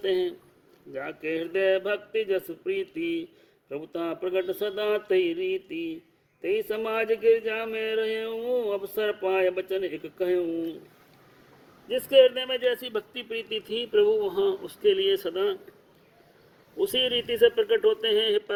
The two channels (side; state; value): both; identical; correlation 1.00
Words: हैं। जाके हृदय भक्ति जस प्रीति, प्रभुता प्रगट सदा तई रीति। तई समाज गिरजा में रहूं, अवसर पाए बचन एक कहूं। जिसके हृदय में जैसी भक्ति प्रीति थी, प्रभु वहाँ उसके लिए सदा उसी रीति से प्रकट होते हैं। हे